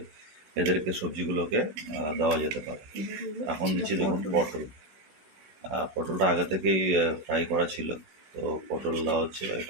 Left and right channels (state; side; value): late; left; 16 ms